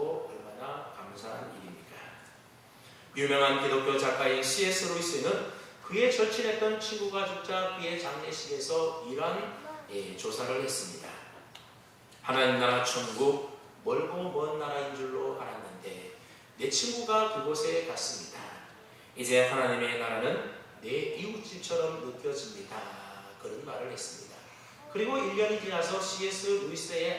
얼마나 감사한 일입니까? 유명한 기독교 작가인 C.S. 루이스는 그의 절친했던 친구가 죽자 그의 장례식에서 이러한 조사를 했습니다. 하나님 나라 천국 멀고 먼 나라인 줄로 알았는데 내 친구가 그곳에 갔습니다. 이제 하나님의 나라는 내 이웃집처럼 느껴집니다. 그런 말을 했습니다. 그리고 1년이 지나서 C.S.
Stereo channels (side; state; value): both; identical; correlation 1.00